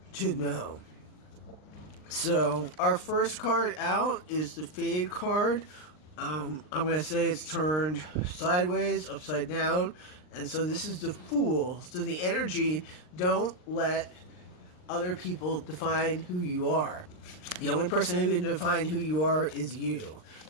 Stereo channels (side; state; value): right; late; 39 ms